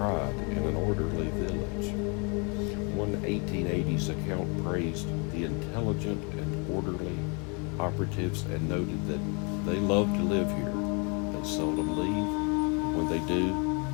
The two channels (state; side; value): quieter; right; 33.3 dB